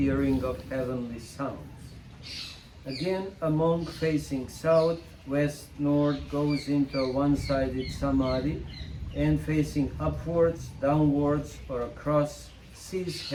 of heavenly sounds. Again, a monk facing south, west, north goes into a one-sided samadhi and facing upwards, downwards, or across sees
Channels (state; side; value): identical; both; correlation 1.00